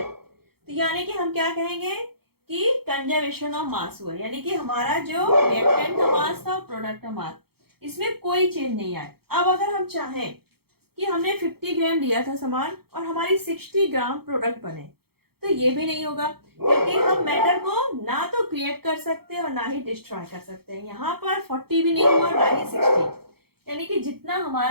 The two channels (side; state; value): left; late; 0.96 ms